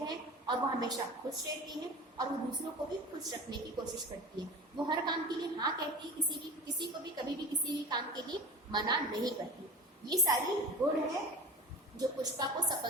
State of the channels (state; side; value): normal; both; correlation 0.35